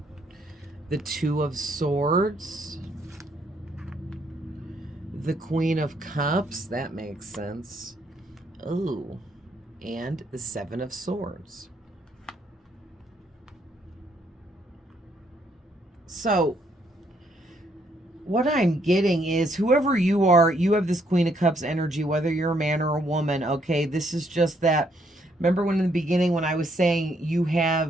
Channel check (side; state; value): both; normal; correlation 0.71